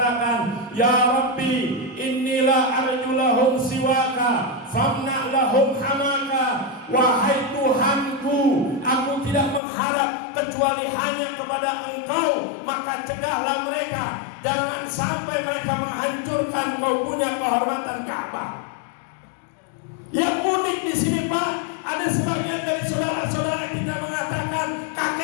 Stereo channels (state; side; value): drops out; right; at 9.6 s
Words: Ya Rabbi, inilah arjulahum siwaka, famna lahum hamaka. Wahai Tuhanku, aku tidak mengharap kecuali hanya kepada Engkau, maka cegahlah mereka, jangan sampai mereka menghancurkan Kau punya kehormatan Ka'bah. Yang unik di sini Pak, ada sebagian dari saudara-saudara kita mengatakan